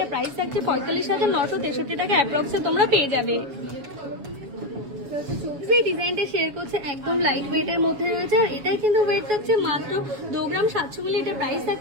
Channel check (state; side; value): late; left; 7.1 ms